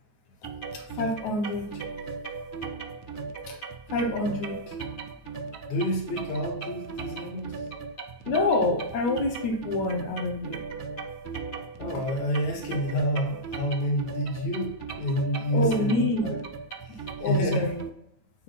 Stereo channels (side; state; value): right; late; 9.3 ms